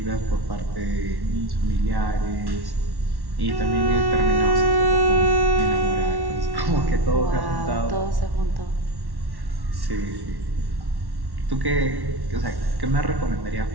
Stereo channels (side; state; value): left; late; 1.1 ms